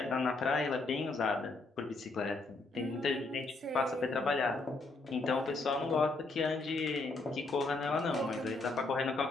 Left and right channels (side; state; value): right; quieter; 3.4 dB